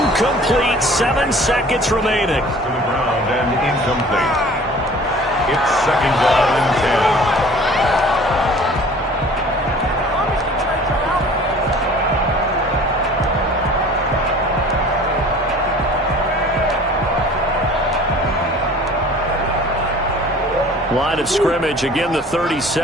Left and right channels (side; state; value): both; normal; correlation 0.47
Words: 7 seconds remaining. To the ground and incomplete. It's 2nd down and 10. Line of scrimmage, again the